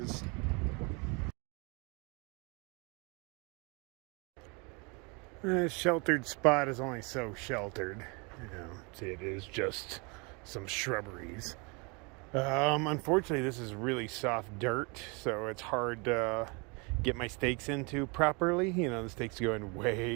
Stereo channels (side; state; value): left; quieter; 30.3 dB